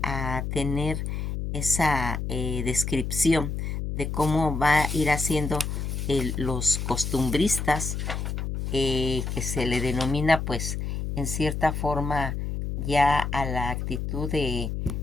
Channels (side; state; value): left; noise; hum, 3 dB below the sound